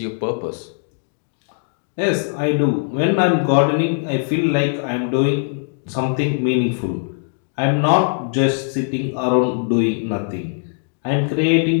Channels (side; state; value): right; silent; digital silence